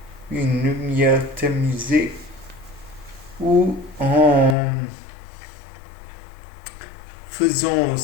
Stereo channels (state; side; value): drops out; right; at 4.5 s